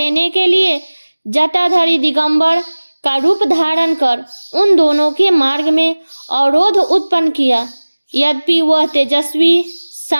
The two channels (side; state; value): both; inverted; correlation -1.00